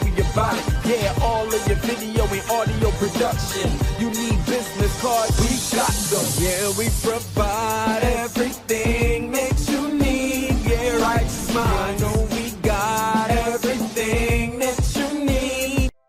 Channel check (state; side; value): identical; both; correlation 1.00